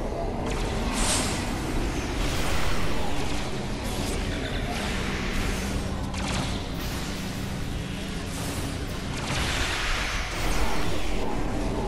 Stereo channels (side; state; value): both; identical; correlation 1.00